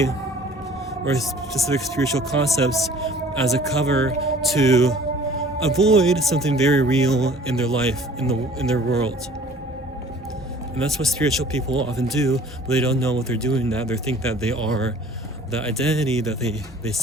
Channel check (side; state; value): both; normal; correlation 0.51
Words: or specific spiritual concepts as a cover to avoid something very real in their life, in their world. And that's what spiritual people often do, but they don't know what they're doing. That they think that they are the identity that they